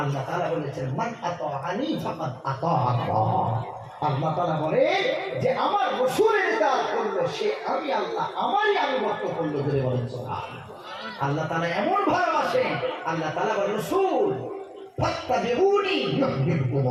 তাআলা বলেছেন মান আতাআনি ফাকাদ আতা আল্লাহ। আল্লাহ তাআলা বলে যে আমার রাসূলের ইতাআত করলো সে আমি আল্লাহ আমারই আনুগত্য করলো। ধরে বলেন সুবহানাল্লাহ। আল্লাহ তাআলা এমন ভালোবাসেন, আল্লাহ তাআলা বলেন রাসূল ফাত্তাবিউনি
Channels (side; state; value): both; identical; correlation 1.00